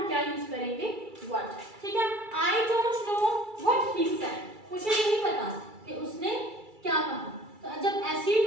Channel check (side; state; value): left; late; 2.3 ms